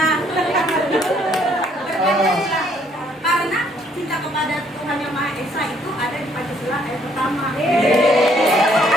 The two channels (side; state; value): both; normal; correlation 0.66